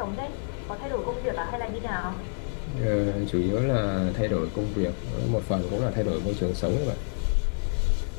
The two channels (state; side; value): silent; right; digital silence